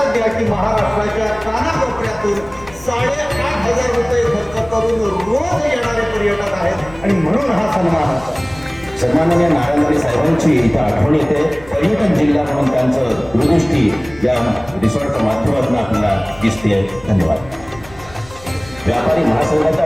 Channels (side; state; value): left; noise; rumble, 21 dB below the sound